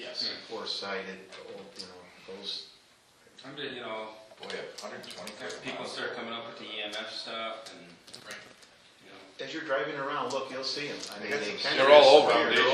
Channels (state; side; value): identical; both; correlation 1.00